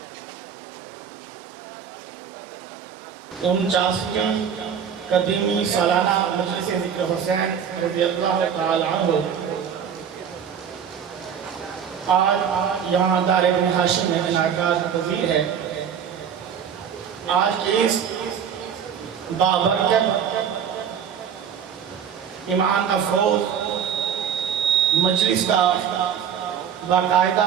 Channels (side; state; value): left; quieter; 8.0 dB